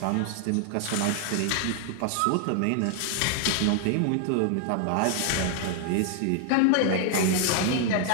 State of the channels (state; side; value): different; both; correlation 0.00